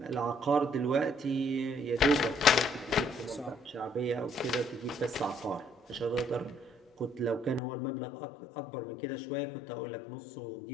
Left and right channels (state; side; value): drops out; right; at 7.6 s